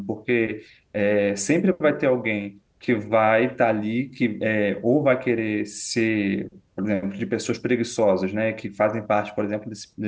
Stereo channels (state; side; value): identical; both; correlation 1.00